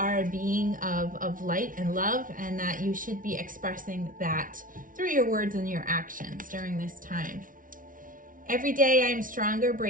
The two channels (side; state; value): left; late; 0.39 ms